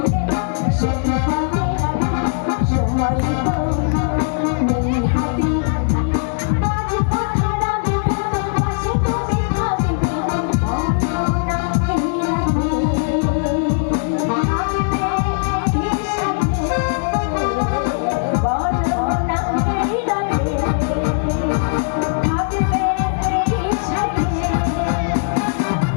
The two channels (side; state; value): right; silent; digital silence